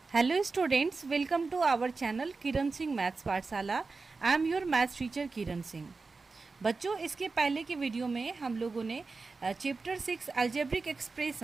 Hello students, welcome to our channel Kiran Singh maths Pathshala. I am your maths teacher Kiran Singh. बच्चों, इसके पहले के वीडियो में हम लोगों ने chapter 6 algebraic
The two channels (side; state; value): left; quieter; 4.1 dB